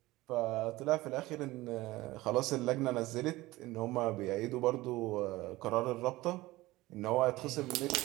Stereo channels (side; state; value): left; quieter; 18.8 dB